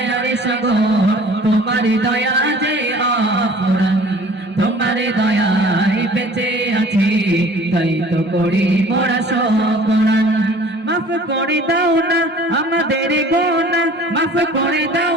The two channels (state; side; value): normal; both; correlation 0.49